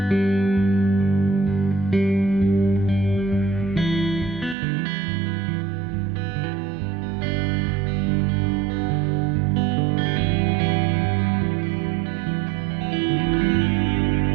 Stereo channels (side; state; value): left; drops out; at 4.5 s